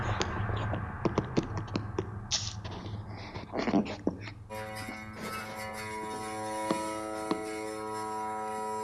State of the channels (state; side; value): identical; both; correlation 1.00